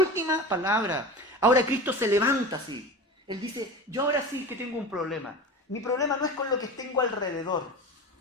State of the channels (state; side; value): normal; both; correlation 0.30